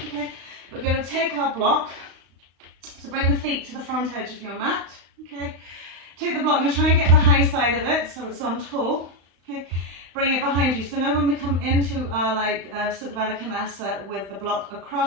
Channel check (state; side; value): late; left; 35 ms